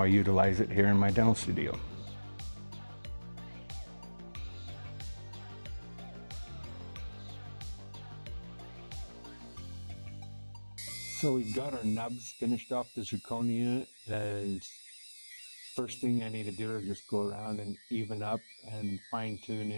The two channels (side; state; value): both; inverted; correlation -1.00